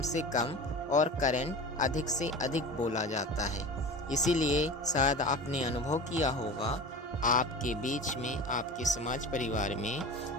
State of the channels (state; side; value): normal; both; correlation 0.33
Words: से कम और करंट अधिक से अधिक बोला जाता है। इसीलिए शायद आपने अनुभव किया होगा आपके बीच में, आपके समाज परिवार में,